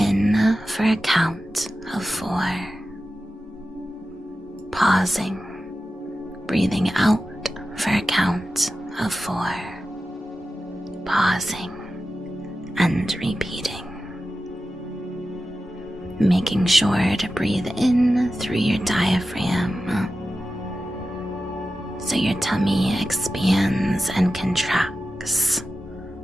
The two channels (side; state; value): both; normal; correlation 0.93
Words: for a count of 4. Pausing. Breathing out for a count of 4. Pausing and repeating. Making sure to breathe in through your diaphragm, so your tummy expands and contracts,